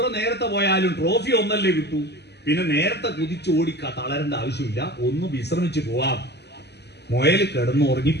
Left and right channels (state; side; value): late; right; 0.49 ms